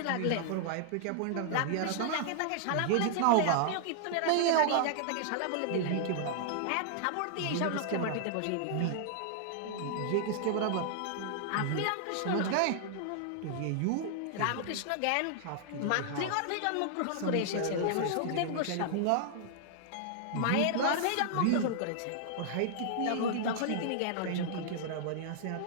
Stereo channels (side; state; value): both; different; correlation -0.01